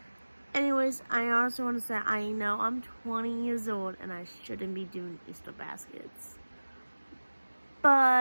Anyways, I also want to say I know I'm 20 years old and I shouldn't be doing Easter baskets.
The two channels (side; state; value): both; inverted; correlation -1.00